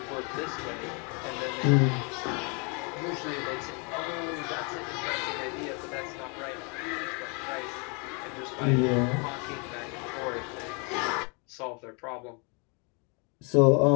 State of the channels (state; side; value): quieter; right; 33.5 dB